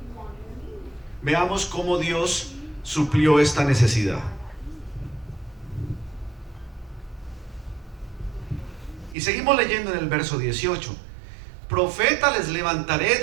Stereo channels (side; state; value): left; drops out; at 9.2 s